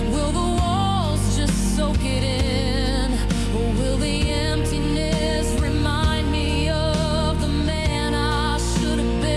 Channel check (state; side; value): identical; both; correlation 1.00